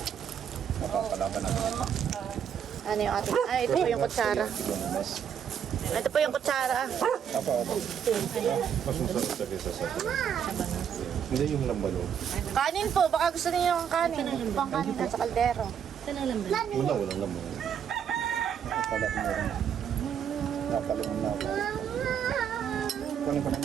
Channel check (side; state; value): left; quieter; 8.2 dB